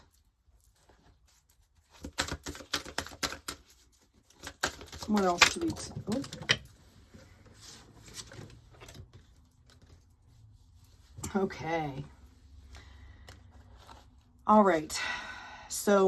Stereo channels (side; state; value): both; identical; correlation 1.00